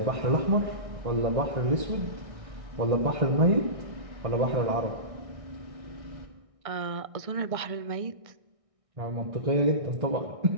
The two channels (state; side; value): late; left; 1.6 ms